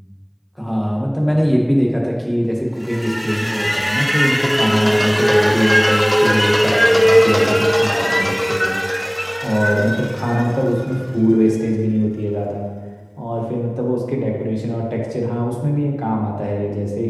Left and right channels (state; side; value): identical; both; correlation 1.00